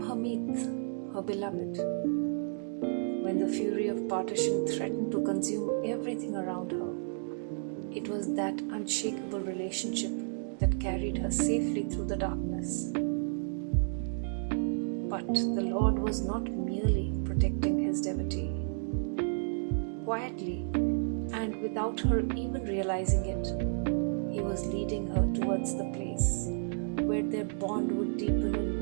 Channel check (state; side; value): silent; left; digital silence